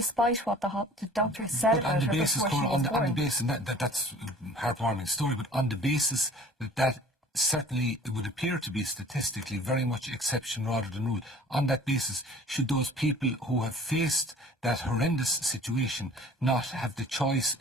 what the doctors said about her before she was born. On the basis, and that's a heartwarming story, but on the basis that certainly it would appear to be statistically very much exception rather than rule. On that basis, should those people who have faced that horrendous situation not have the choice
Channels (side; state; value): both; normal; correlation 0.48